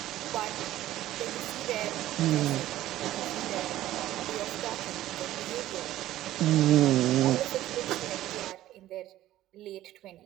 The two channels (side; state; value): left; quieter; 14.2 dB